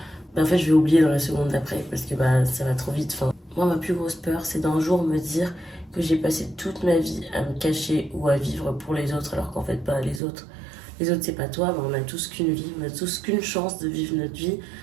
bah, en fait, je vais oublier dans la seconde d'après parce que bah, ça va trop vite. Enfin, moi, ma plus grosse peur, c'est d'un jour me dire que j'ai passé toute ma vie à me cacher ou à vivre pour les autres, alors qu'en fait, pas les autres. Les autres, c'est pas toi, mais on a tous qu'une vie, on a tous qu'une chance de vivre notre vie.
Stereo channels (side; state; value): left; drops out; at 10.2 s